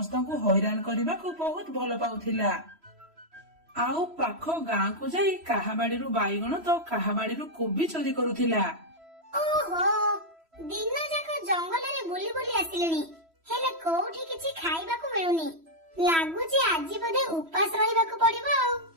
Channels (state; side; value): late; left; 3.1 ms